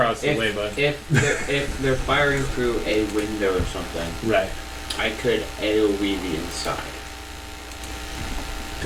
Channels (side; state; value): both; identical; correlation 1.00